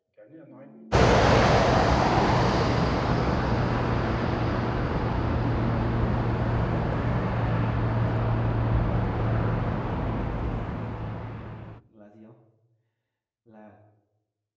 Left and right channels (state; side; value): identical; both; correlation 1.00